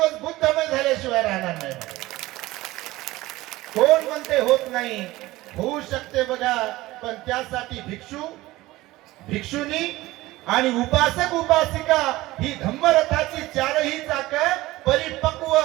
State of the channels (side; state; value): left; quieter; 18.2 dB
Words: बुद्धमय झाल्याशिवाय राहणार नाही. कोण म्हणते होत नाही? होऊ शकते बघा. पण त्यासाठी भिक्षू, भिक्षुनी आणि उपासक उपासिका ही धम्मरथाची चारही चाक परिपक्व